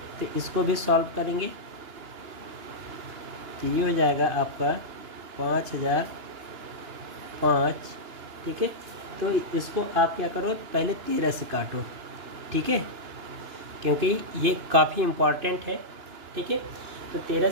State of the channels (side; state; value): left; late; 2.9 ms